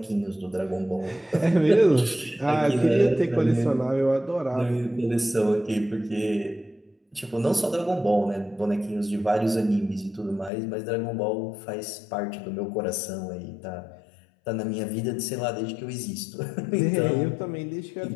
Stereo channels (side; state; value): right; drops out; at 10.5 s